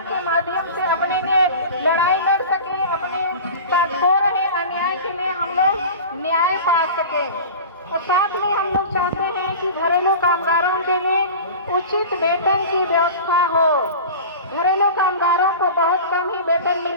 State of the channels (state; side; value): inverted; both; correlation -0.34